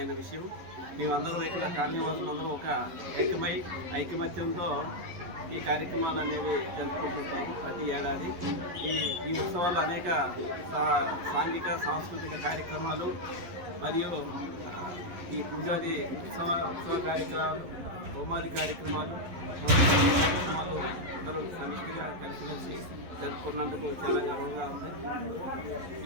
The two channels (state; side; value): late; left; 11 ms